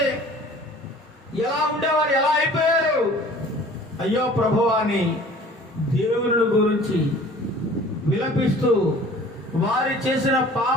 ఎలా ఉండేవారు ఎలా అయిపోయారు, అయ్యో ప్రభువా అని దేవుని గురించి విలపిస్తూ, వారి చేసిన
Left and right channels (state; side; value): normal; both; correlation 0.48